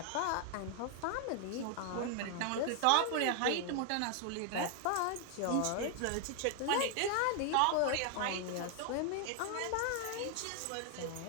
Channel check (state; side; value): different; both; correlation 0.01